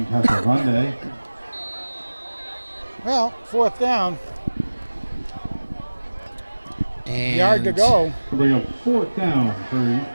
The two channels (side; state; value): both; inverted; correlation -1.00